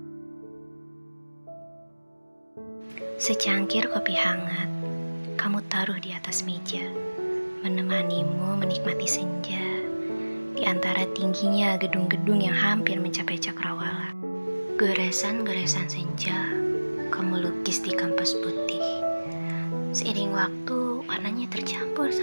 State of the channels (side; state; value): both; inverted; correlation -1.00